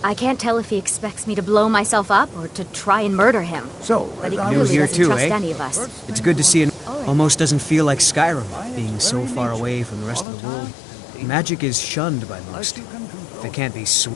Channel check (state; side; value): drops out; right; at 10.2 s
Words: I can't tell if he expects me to blow myself up or to try and murder him. So, but he New clearly here doesn't too, trust eh? any of us. It's good to see it. Almost doesn't feel like Skyrim, being so far away from the rest of the world. Magic is shunned by most. If it can't be